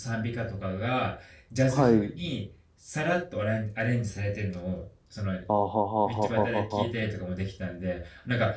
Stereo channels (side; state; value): both; identical; correlation 1.00